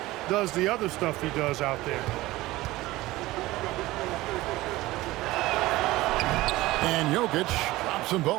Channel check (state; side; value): quieter; left; 18.3 dB